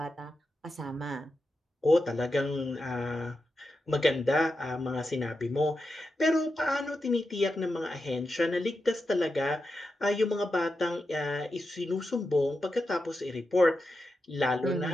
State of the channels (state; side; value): normal; both; correlation 0.89